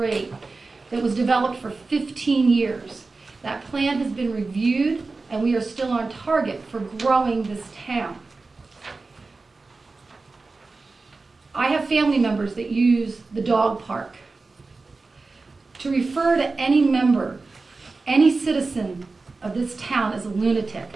that was developed for 15 years. That plan has been reviewed, and we are still on target for growing this town. I have family members that use the dog park. To refer to any member, any citizen of this town as a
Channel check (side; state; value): left; quieter; 3.8 dB